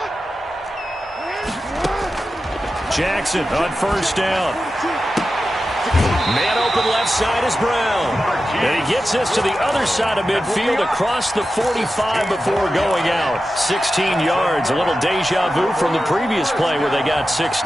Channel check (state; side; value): normal; both; correlation 0.92